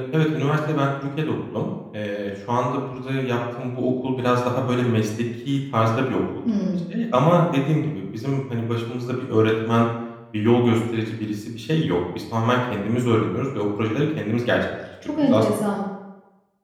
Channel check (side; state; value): both; identical; correlation 1.00